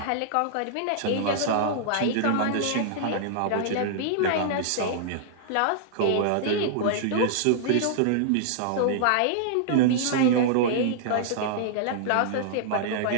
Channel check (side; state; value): both; different; correlation -0.01